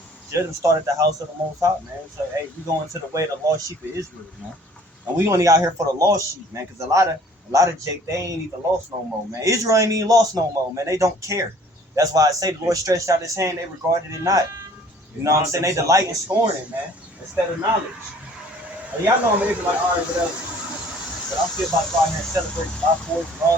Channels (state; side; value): normal; both; correlation 0.54